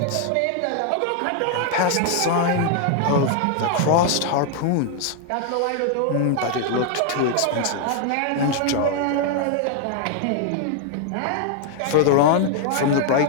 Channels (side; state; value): both; different; correlation 0.00